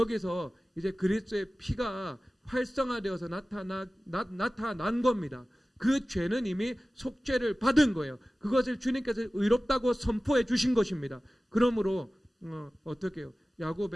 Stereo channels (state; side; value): normal; both; correlation 0.97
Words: 이제 그리스도의 피가 활성화되어서 나타난 겁니다. 그 죄는 이미 속죄를 받은 거예요. 그것을 주님께서 의롭다고 선포해 주신 것입니다. 그러므로 어떻게 해요?